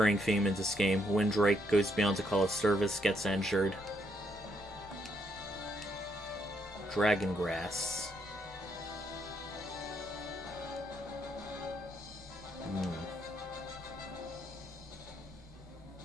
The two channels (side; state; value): both; normal; correlation 0.75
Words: theme in this game. Windrake goes beyond the call of service, gets injured. Dragon Grass.